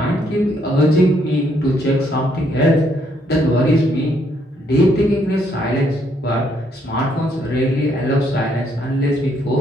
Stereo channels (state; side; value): normal; both; correlation 0.71